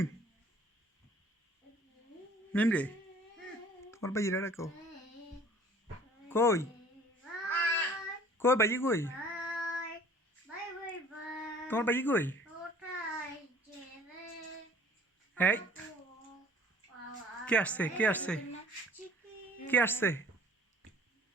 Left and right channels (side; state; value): both; normal; correlation 0.51